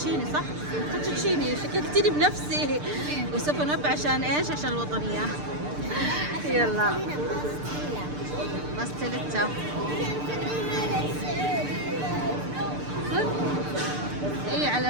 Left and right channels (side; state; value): left; late; 6.7 ms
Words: صح؟ فوتوتشيني شككتني بنفسي. وسوف نب عشان ايش؟ عشان الوطنية. يلا باستيليتا. اي